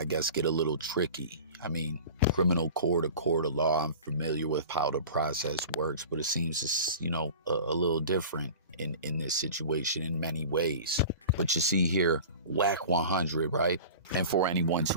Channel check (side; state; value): both; inverted; correlation -0.38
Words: guess, get a little tricky. I mean, criminal court, a court of law, I'm familiar with how the process works, but it seems it's, a little different in this situation in many ways. But you see here, Wack100, right? And for anyone